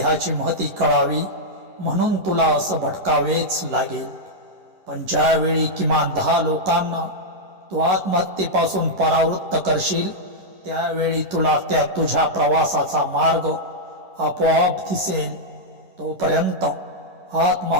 महती कळावी म्हणून तुला असं भटकावेच लागेल. पण ज्यावेळी किमान 10 लोकांना तू आत्महत्येपासून परावृत्त करशील, त्यावेळी तुला त्या तुझ्या प्रवासाचा मार्ग आपोआप दिसेल. तोपर्यंत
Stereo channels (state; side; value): late; left; 11 ms